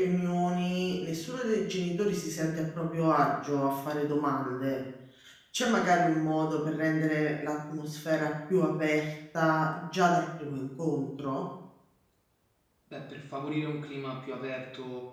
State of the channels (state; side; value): identical; both; correlation 1.00